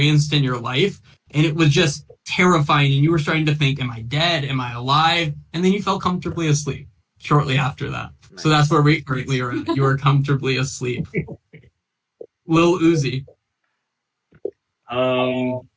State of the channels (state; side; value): identical; both; correlation 1.00